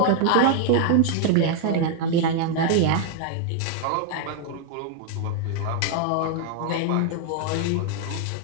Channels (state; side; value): different; both; correlation 0.00